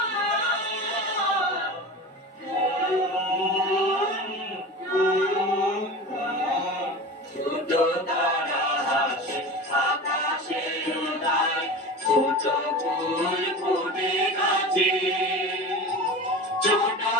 ছোট তারা হাসে আকাশে উড়ায়, ছোট ফুল ফুটে গাছে। ছোট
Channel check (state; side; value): normal; both; correlation 0.32